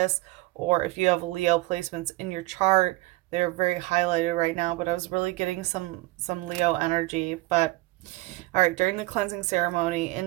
or if you have Leo placements in your chart, they're very highlighted right now. But I was really getting some Leo energy. But all right, during the cleansing ceremony,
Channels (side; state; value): left; quieter; 20.8 dB